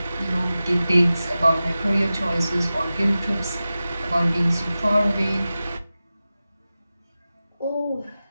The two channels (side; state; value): both; inverted; correlation -0.95